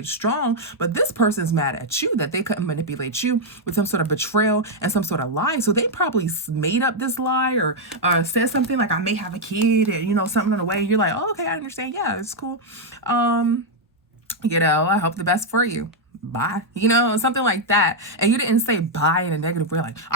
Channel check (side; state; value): both; normal; correlation -0.01